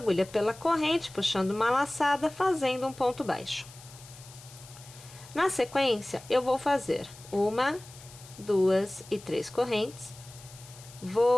pela corrente, puxando uma laçada, fazendo um ponto baixo. Na sequência, eu vou fazer 1, 2 e 3 correntes.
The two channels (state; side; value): noise; left; hiss, 19 dB below the sound